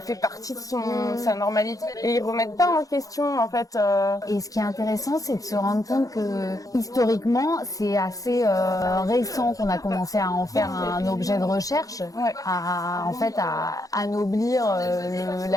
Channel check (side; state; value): right; late; 0.17 ms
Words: fait partie de sa normalité, et ils remettent pas en question en fait. Et ce qui est intéressant, c'est de se rendre compte que historiquement c'est assez récent qu'on a commencé à en faire un objet de recherche, à anoblir